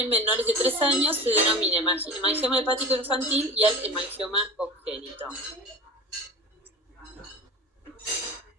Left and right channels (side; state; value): both; normal; correlation 0.32